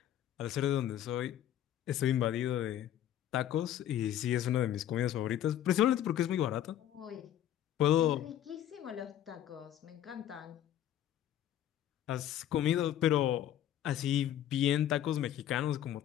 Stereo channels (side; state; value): right; quieter; 11.3 dB